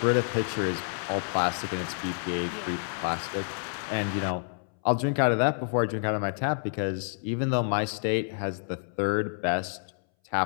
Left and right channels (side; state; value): right; silent; 59 dB below the other